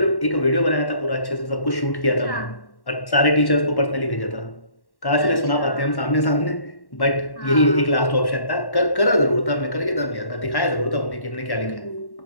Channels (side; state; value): right; late; 1.1 ms